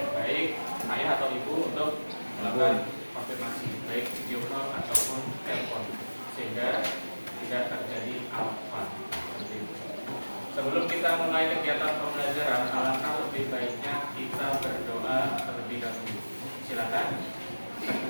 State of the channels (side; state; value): both; inverted; correlation -1.00